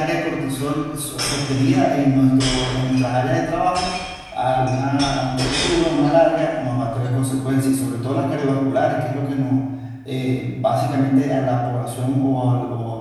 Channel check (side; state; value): both; identical; correlation 1.00